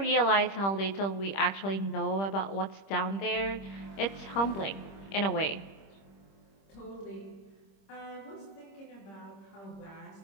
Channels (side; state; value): right; late; 25 ms